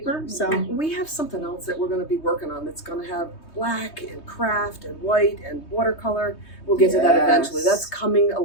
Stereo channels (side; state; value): right; late; 3.2 ms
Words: So we have something else that we're going to be working on that's going to have black and craft and white and watercolor. We'll get to that eventually. That's coming a